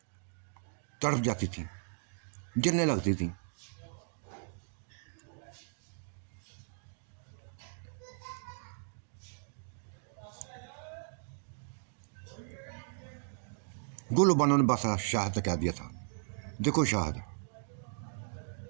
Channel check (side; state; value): left; silent; digital silence